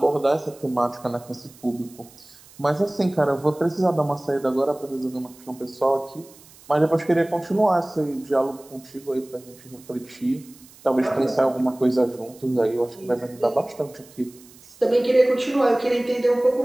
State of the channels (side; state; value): right; noise; hiss, 24 dB below the sound